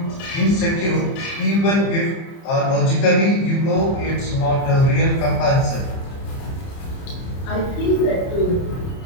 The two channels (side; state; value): right; late; 30 ms